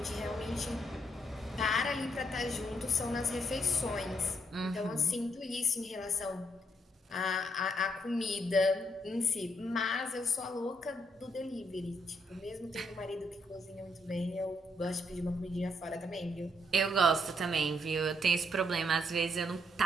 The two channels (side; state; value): both; normal; correlation 0.74